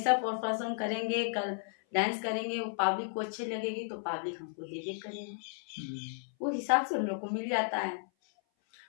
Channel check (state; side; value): silent; right; 55 dB below the other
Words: परफॉर्म करेंगे, कल डांस करेंगे, वो पब्लिक को अच्छी लगेगी तो पब्लिक हमको दे करेगी, वो हिसाब से हम लोग को मिल जाता है।